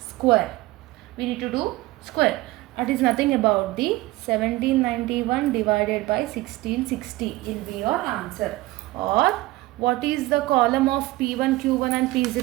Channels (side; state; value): left; quieter; 18.7 dB